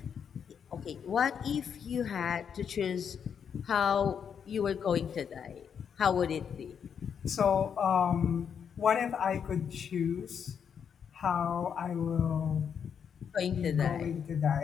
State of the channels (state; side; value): quieter; right; 7.5 dB